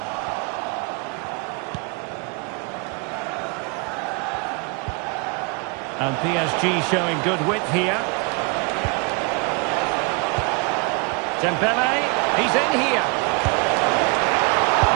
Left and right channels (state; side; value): quieter; left; 32.5 dB